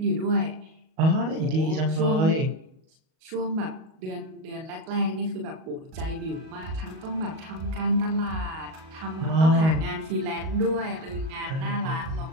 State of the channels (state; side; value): late; left; 38 ms